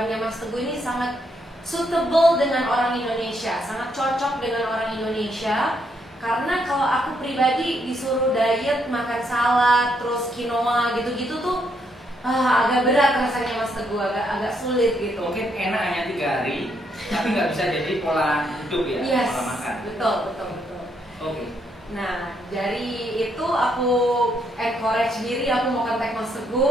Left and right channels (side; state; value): both; normal; correlation 0.75